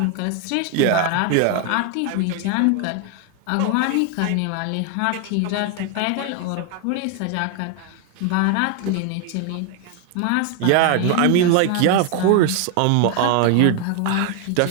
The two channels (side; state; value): both; different; correlation 0.00